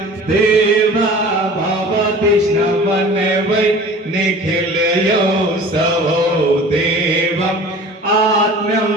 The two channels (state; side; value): normal; both; correlation 0.42